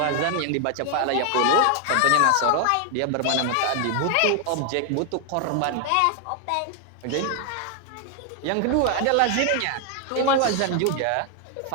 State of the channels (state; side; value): different; both; correlation 0.00